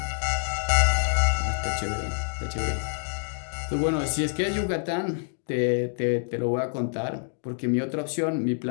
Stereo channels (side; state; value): right; silent; digital silence